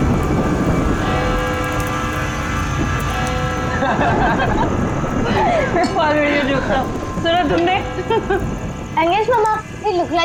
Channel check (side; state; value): both; identical; correlation 1.00